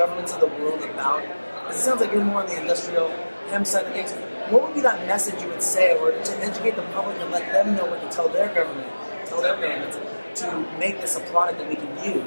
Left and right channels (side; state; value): both; inverted; correlation -1.00